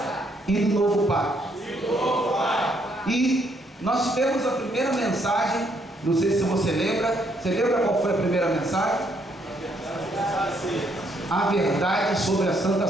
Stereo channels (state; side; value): normal; both; correlation 0.71